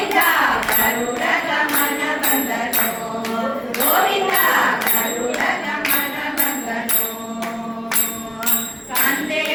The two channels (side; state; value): both; identical; correlation 1.00